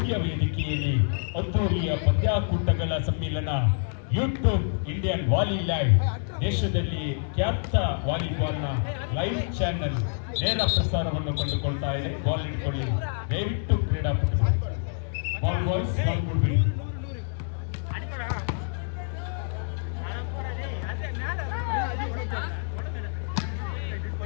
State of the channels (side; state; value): right; silent; digital silence